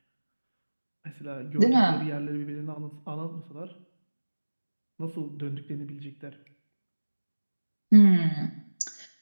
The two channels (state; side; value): inverted; both; correlation -1.00